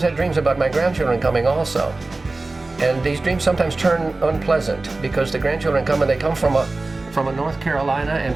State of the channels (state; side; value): quieter; left; 3.3 dB